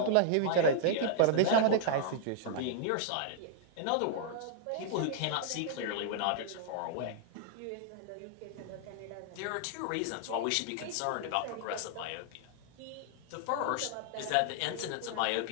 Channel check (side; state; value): both; different; correlation -0.01